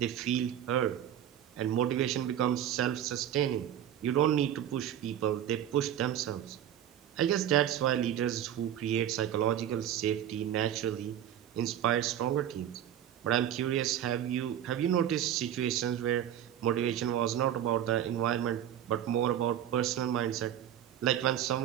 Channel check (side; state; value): left; quieter; 10.6 dB